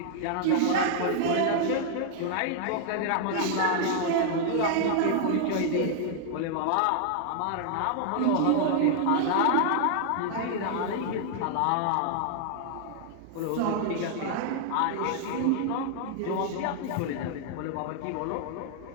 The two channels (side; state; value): both; different; correlation -0.01